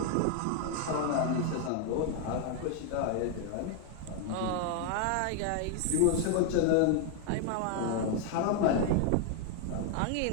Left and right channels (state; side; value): different; both; correlation 0.00